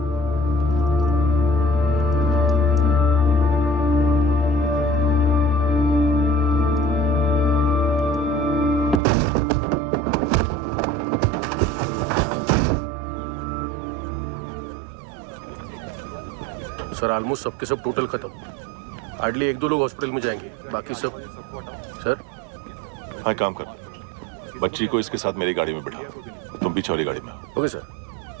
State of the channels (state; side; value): drops out; left; at 9.0 s